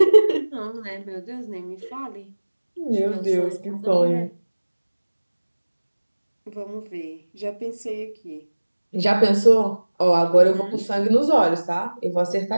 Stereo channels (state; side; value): inverted; both; correlation -1.00